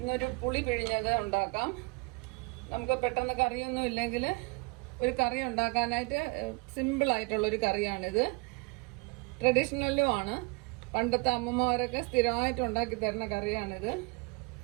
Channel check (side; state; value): left; quieter; 29.3 dB